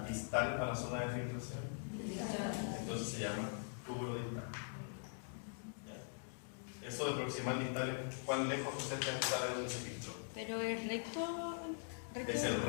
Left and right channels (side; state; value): right; silent; digital silence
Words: distal a la zona de filtración? Distal. Entonces se llama túbulo distal. ¿Ya? Eso de proximal distal es cuán lejos usted está de donde se filtró. Pero es recto. Es el